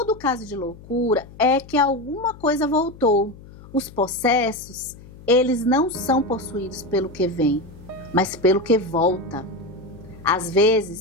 caso de loucura é que alguma coisa voltou. Os possessos, eles não são possuídos pelo que vem, mas pelo que volta. Às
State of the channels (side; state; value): left; noise; hum, 19 dB below the sound